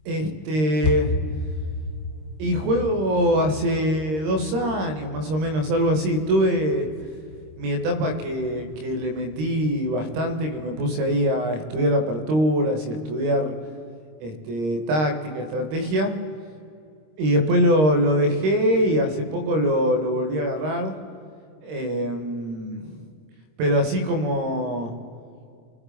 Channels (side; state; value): left; late; 26 ms